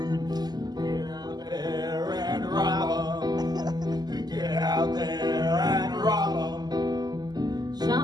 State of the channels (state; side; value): late; left; 0.20 ms